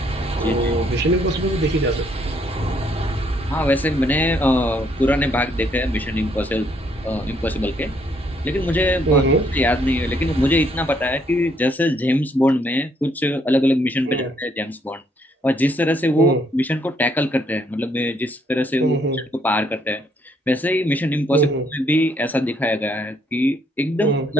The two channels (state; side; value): normal; both; correlation 0.69